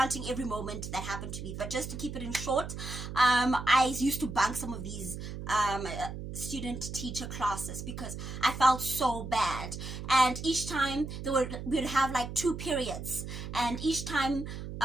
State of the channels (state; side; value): noise; right; hum, 8 dB below the sound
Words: every moment that happened to me. But just to keep it in short, I used to bunk some of these student teacher classes because I felt so bad. And each time we would have like 2 periods, and each time